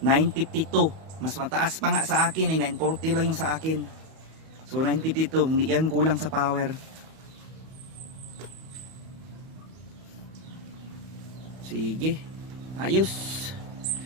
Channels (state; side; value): late; left; 31 ms